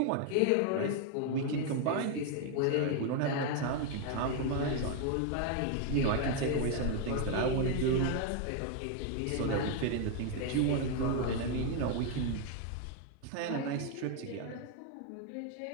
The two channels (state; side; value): different; both; correlation 0.01